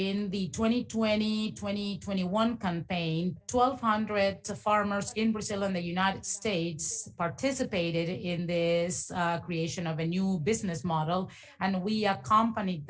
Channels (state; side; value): identical; both; correlation 1.00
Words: the 2020-2021 campaign, 1,200 farmers in Brazil and the United States participated in this creation of a new business model, and we accompanied